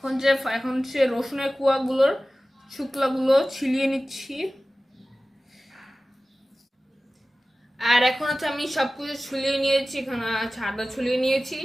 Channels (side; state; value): both; normal; correlation 0.96